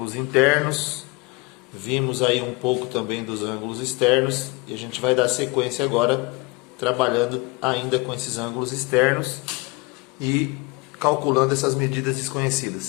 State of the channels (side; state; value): right; quieter; 26.5 dB